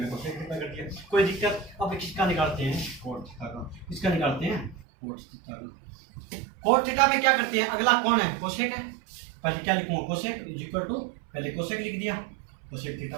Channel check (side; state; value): left; drops out; at 4.8 s